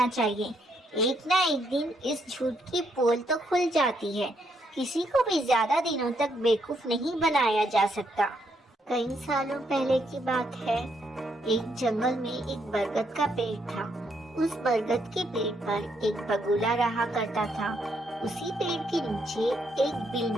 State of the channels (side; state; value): both; normal; correlation 0.75